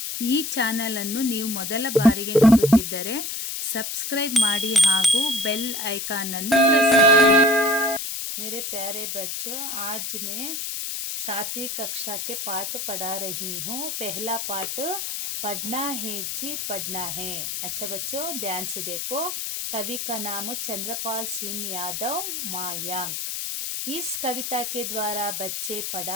ಈ ಚಾನೆಲ್ ಅನ್ನು ನೀವು ಮೊದಲ ಬಾರಿಗೆ ನೋಡುತ್ತಿದ್ದರೆ ಸಬ್ಸ್ಕ್ರೈಬ್ ಮಾಡಿ ಹಾಗೂ ಬೆಲ್ ಐಕಾನ್ ಅನ್ನು ಪ್ರೆಸ್ ಮಾಡಿ. मेरे प्यारे बच्चों, आज मैं 7वीं कक्षा के पाठ पढ़ा रही हूँ. पहला पाठ पढ़ना है जी पढ़ना है. अच्छा बच्चों, ध्यान से देखो. कवि का नाम चंद्रपाल सिंह यादव मायांक. इस कविता के द्वारा बच्चे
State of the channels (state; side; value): noise; left; hiss, 4 dB below the sound